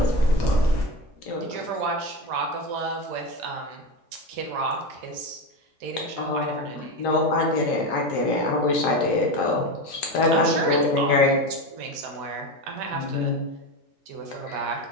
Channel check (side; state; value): both; normal; correlation 0.19